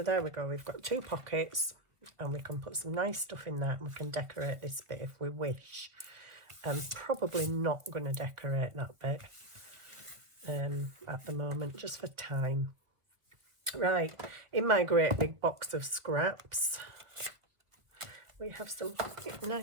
there we go. We've got 2 pockets, and we can put some nice stuff in that, and we can decorate this bit if we wish. I'm probably not going to decorate that bit at the moment, just for time. Right, in my great big box of scraps, we have some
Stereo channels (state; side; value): late; left; 1.3 ms